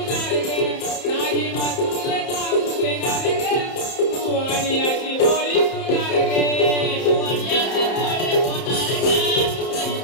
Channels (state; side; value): late; right; 31 ms